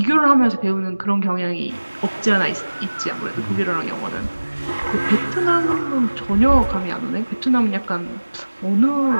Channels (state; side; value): inverted; both; correlation -1.00